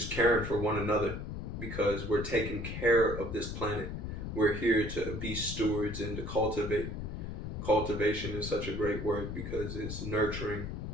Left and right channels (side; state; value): left; noise; rumble, 6 dB below the sound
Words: caring for one another, because we're taking care of this planet. We're here to be stewards and to cultivate. Cultivation is such a great word because it's nurturing,